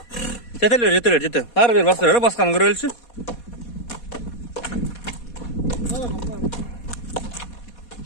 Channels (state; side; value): late; right; 4.2 ms